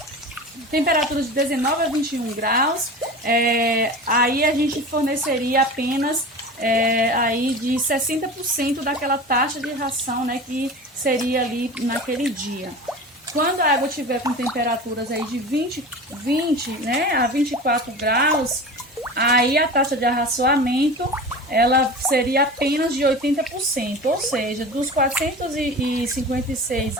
Temperaturas de 19 a 21 graus, aí a gente forneceria apenas aí de 60% daquela taxa de ração, né, que seria ali naquele dia. Quando a água estiver com temperaturas aí de 20, né, a 24 graus, aí a taxa de arraçoamento ela seria apenas de 80%, ou seja, dos 456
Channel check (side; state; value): both; normal; correlation 0.33